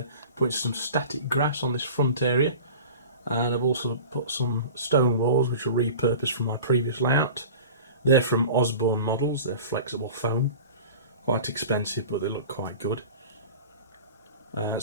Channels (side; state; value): both; inverted; correlation -0.37